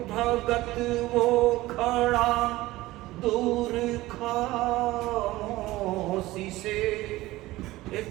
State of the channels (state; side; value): quieter; left; 18.0 dB